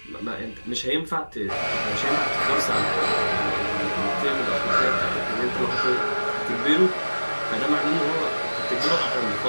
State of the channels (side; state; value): both; inverted; correlation -1.00